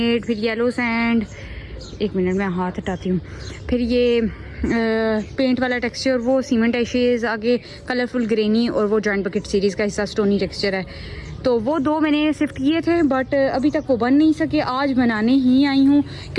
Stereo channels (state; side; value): identical; both; correlation 1.00